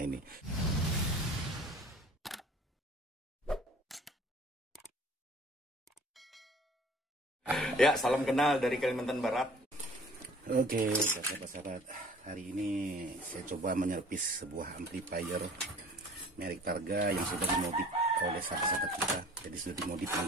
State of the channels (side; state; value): both; normal; correlation 0.49